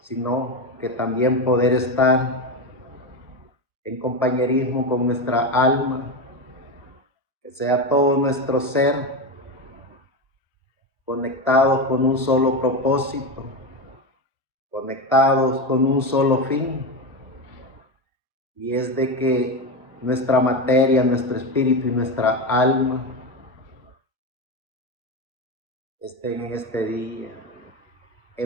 que también poder estar en compañerismo con nuestra alma, que sea todo nuestro ser conectados con un solo propósito, conectados con un solo fin, y es de que nuestra materia, nuestro espíritu y nuestra alma estén en este día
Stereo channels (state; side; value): normal; both; correlation 0.16